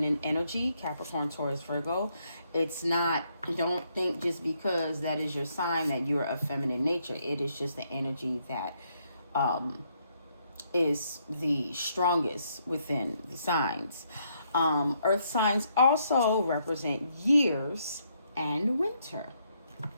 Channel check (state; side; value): inverted; both; correlation -0.74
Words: energy, Capricorn, Taurus, Virgo. It's not, don't think just because that is your sign that you're of feminine nature. It is just the energy that is the strongest within the signs. Earth signs also represent years and winter.